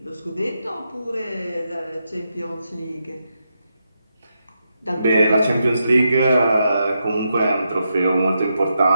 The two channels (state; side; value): inverted; both; correlation -0.84